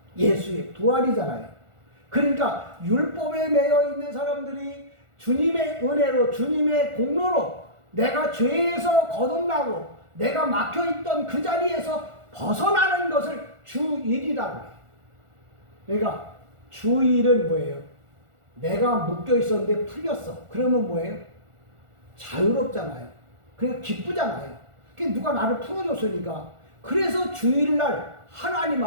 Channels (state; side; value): late; left; 1.4 ms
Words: 예수의 부활이잖아요. 그러니까 율법에 매여있는 사람들이 주님의 은혜로, 주님의 공로로 내가 죄에서 거듭나고 내가 막혀있던 그 자리에서 벗어나는 것을 주일이라고 해요. 그러니까 주일은 뭐예요? 내가 묶여있었는데 풀렸어. 그러면 뭐예요? 자유롭잖아요. 그러니까 기쁘잖아요. 그러니까 누가 나를 풀어줬으니까. 그래서 주일날 하나님